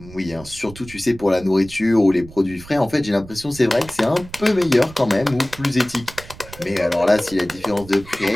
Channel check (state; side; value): noise; right; rumble, 18 dB below the sound